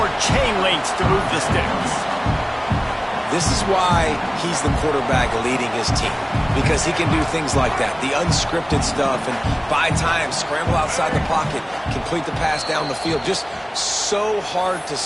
chain links to move the sticks. This is why he's the quarterback leading his team, because he can do things like that, the unscripted stuff, and buy time, scramble outside the pocket, complete the pass down the field. Just so hard to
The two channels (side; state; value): both; identical; correlation 1.00